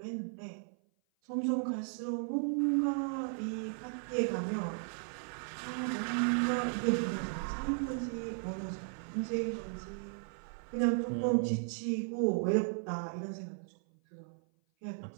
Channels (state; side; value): silent; left; 54 dB below the other